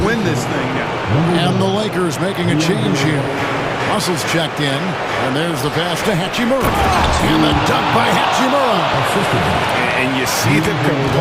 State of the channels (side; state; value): both; identical; correlation 1.00